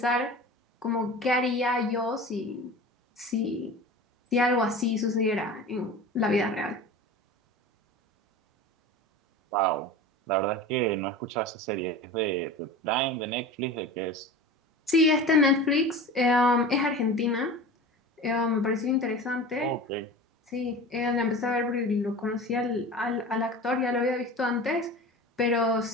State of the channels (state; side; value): normal; both; correlation 0.34